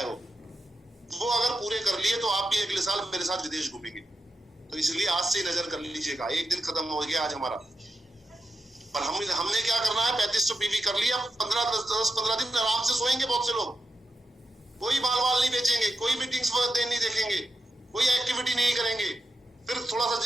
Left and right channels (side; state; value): both; normal; correlation 0.88